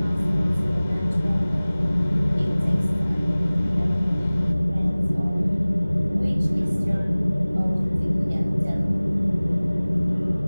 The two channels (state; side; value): inverted; both; correlation -0.99